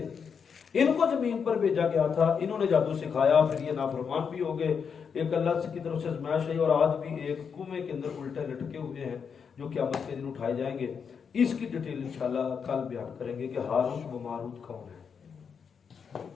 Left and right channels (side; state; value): right; quieter; 6.5 dB